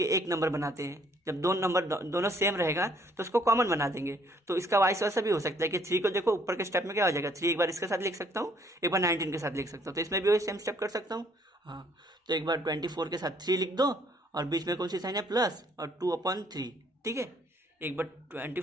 एक नंबर बनाते हैं, जब 2 नंबर दोनों सेम रहेगा तो उसको कॉमन बना देंगे। तो इसका वाइस वैसा भी हो सकता है कि 3 को देखो ऊपर के स्टेप में क्या हो जाएगा, 3 एक बार इसके साथ लिख सकता हूँ, एक बार 19 के साथ लिख सकता हूँ, तो इसमें भी वही सेम स्टेप कर सकता हूँ। हाँ, तो एक बार 24 के साथ 3 लिख दो, और बीच में कौन सी साइन है, प्लस, और 2/3। ठीक है, एक बार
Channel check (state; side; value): normal; both; correlation 0.64